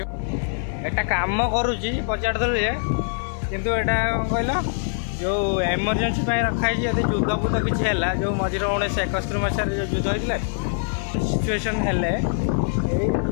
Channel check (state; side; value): silent; right; 58 dB below the other